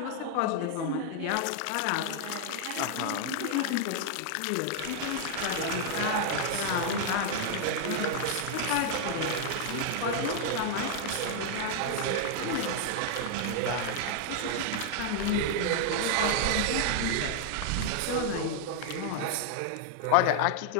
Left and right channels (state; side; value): different; both; correlation 0.00